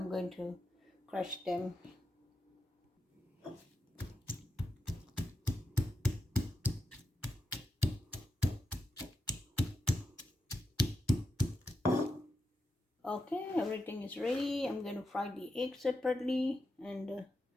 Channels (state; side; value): normal; both; correlation 0.87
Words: going to crush them. Okay, everything is ready. I'm going to fry the egg separately, and